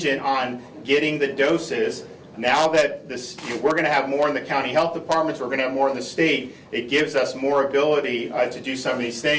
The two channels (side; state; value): both; identical; correlation 1.00